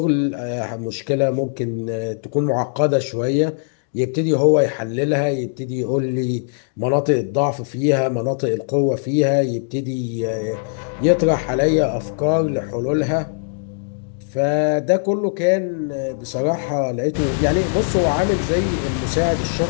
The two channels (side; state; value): right; silent; digital silence